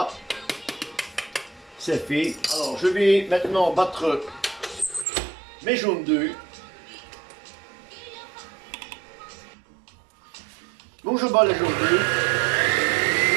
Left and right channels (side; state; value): left; drops out; at 5.1 s